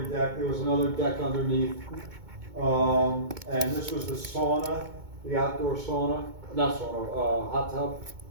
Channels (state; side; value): late; left; 2.2 ms